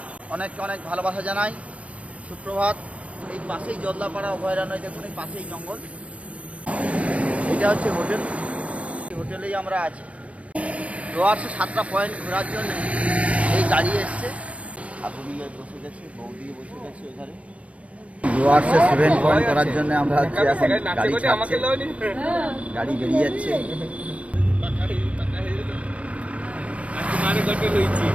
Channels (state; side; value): late; left; 0.064 ms